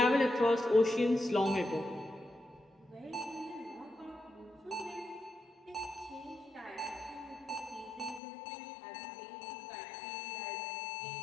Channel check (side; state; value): right; drops out; at 8.2 s